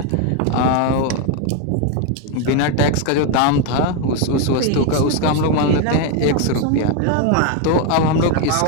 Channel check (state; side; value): different; both; correlation 0.02